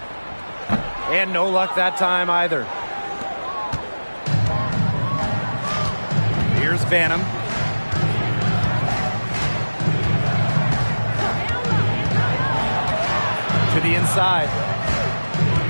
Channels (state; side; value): inverted; both; correlation -1.00